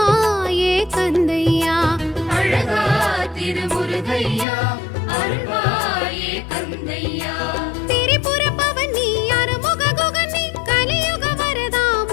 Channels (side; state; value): right; drops out; at 4.5 s